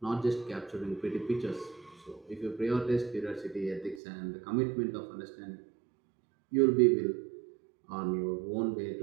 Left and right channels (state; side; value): drops out; left; at 4.0 s